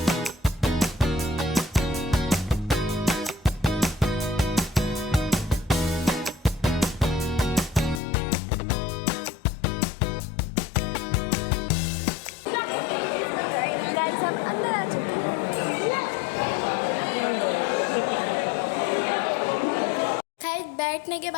हम अंदर आ चुके हैं। बैठने के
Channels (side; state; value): right; drops out; at 8.0 s